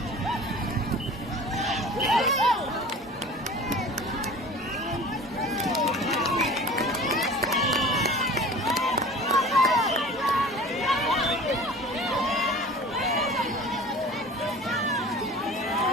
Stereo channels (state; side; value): normal; both; correlation 0.40